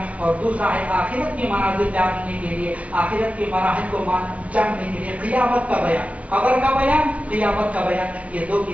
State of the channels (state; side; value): late; left; 0.065 ms